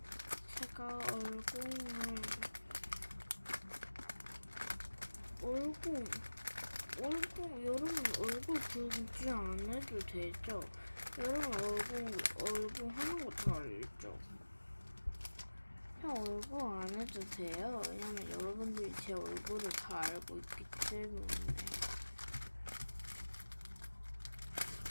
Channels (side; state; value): both; inverted; correlation -1.00